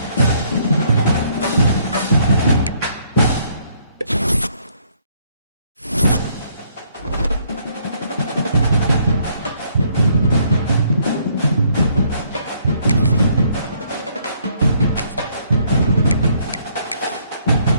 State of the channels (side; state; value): both; inverted; correlation -0.67